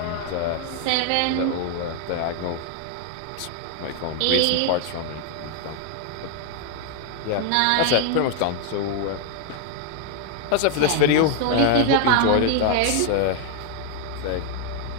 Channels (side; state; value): both; different; correlation 0.00